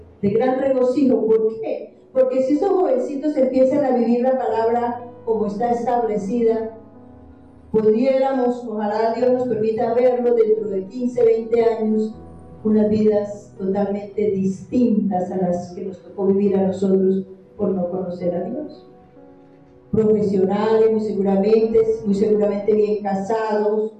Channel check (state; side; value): identical; both; correlation 1.00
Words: de gran regocijo. ¿Por qué? Porque si esos jovencitos empiezan a vivir la palabra como está establecida, pudiéramos, ojalá Dios nos permita verlo dentro de 15, 20 años, unas vidas totalmente distintas a las que nos tocó vivir a nosotros por no conocer a Dios. Profesionales, muy seguramente bien casados,